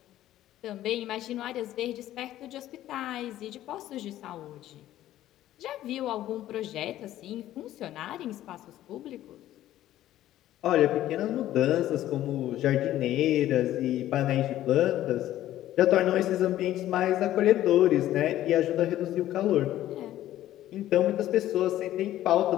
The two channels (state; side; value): quieter; right; 13.5 dB